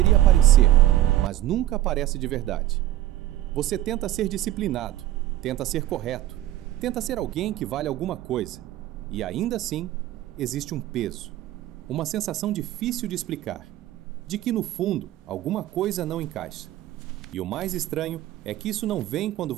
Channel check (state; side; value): quieter; left; 13.8 dB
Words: aparecer, mas nunca aparece de verdade. Você tenta ser disciplinado, tenta ser correto, tenta ser alguém que vale alguma coisa, e ainda assim existe um peso, uma sensação difícil de explicar, de que no fundo alguma coisa não encaixa. E o mais estranho é que isso não vem quando